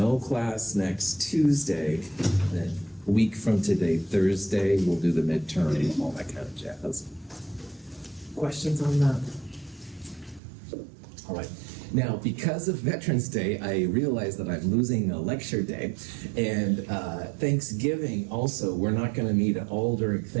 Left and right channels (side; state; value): left; drops out; at 10.4 s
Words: class next Tuesday, then a week from today, Thursday, we'll do the midterm and all that kind of jazz. Questions on that? All right. Now, because of Veterans Day, I realize that I'm losing a lecture day. And Thanksgiving also, we're not going to meet at all during